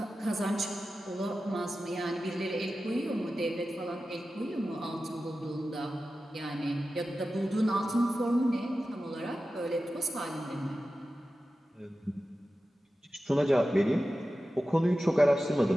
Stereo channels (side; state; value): both; normal; correlation 0.94